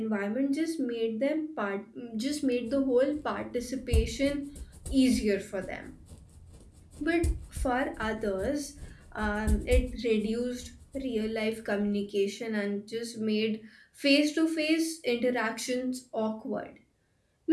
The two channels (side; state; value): both; identical; correlation 1.00